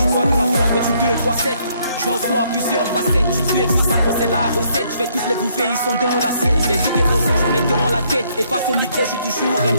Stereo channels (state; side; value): inverted; both; correlation -0.69